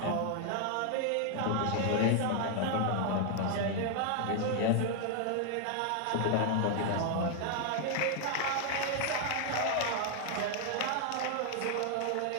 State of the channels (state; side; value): different; both; correlation 0.00